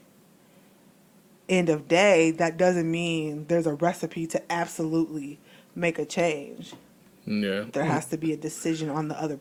end of day, that doesn't mean there's a recipe to absolutely make a change. Yeah. There has to be a decision on the other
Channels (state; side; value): identical; both; correlation 1.00